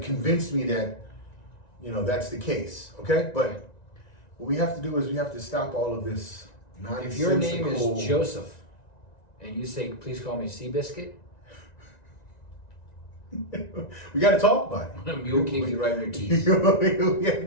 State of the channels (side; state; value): right; late; 1.9 ms